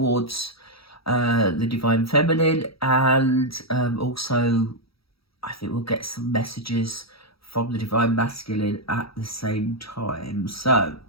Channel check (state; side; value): late; right; 0.76 ms